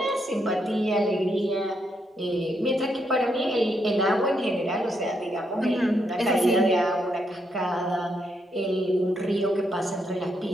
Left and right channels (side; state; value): both; normal; correlation 0.78